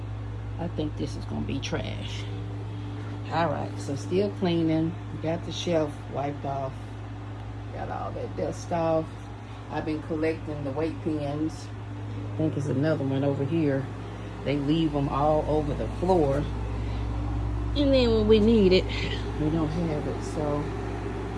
I think this is gonna be trash. All right, so still cleaning. Got the shelf wiped off. Got all that dust off. I've been collecting the weight pens. I think there's another one over here. They leave them all over the floor. And then when we need it, we don't have it. So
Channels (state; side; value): identical; both; correlation 1.00